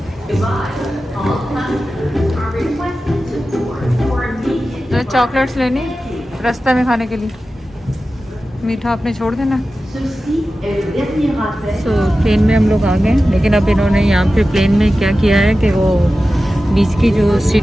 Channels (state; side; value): normal; both; correlation 0.94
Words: चॉकलेट्स लेनी रास्ते में खाने के लिए, मीठा आपने छोड़ देना। प्लेन में हम लोग आ गए, लेकिन अब इन्होंने यहाँ पे प्लेन में क्या किया है कि वो बीच की जो